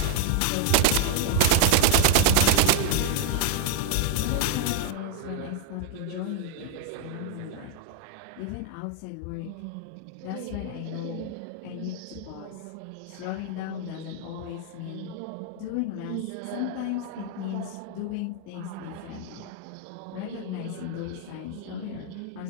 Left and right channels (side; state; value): both; different; correlation 0.00